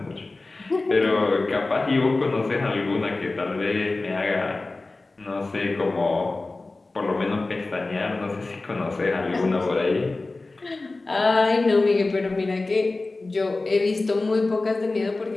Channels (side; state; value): right; quieter; 3.3 dB